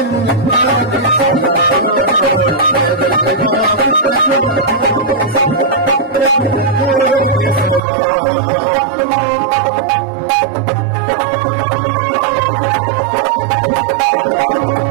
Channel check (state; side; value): drops out; left; at 7.8 s